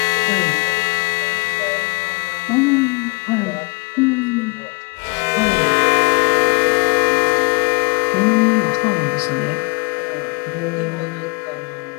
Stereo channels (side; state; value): right; quieter; 31.2 dB